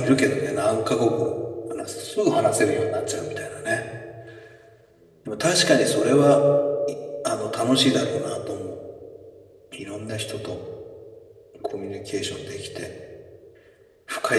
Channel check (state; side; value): identical; both; correlation 1.00